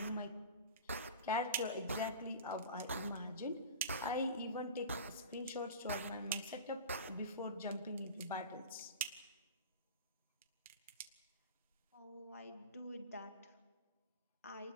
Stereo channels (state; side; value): inverted; both; correlation -0.33